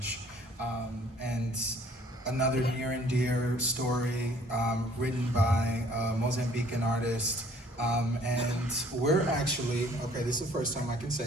And another near and dear story written by a Mozambican artist. And we're actually, okay, this is the first time I can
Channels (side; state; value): both; normal; correlation 0.57